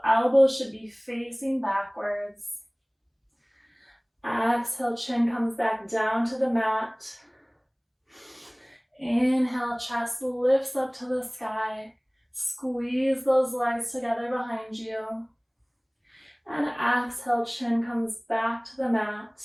elbows should be facing backwards. Exhale, chin comes back down to the mat. Inhale, chest lifts up to the sky. Squeeze those legs together behind you. And exhale, chin comes back to the mat.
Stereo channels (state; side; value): identical; both; correlation 1.00